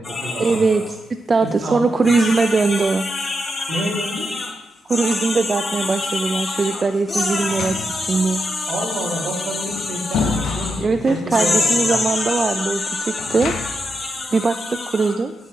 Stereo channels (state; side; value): normal; both; correlation 0.86